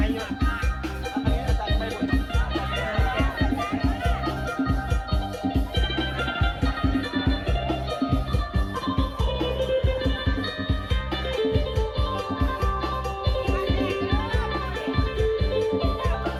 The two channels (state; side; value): identical; both; correlation 1.00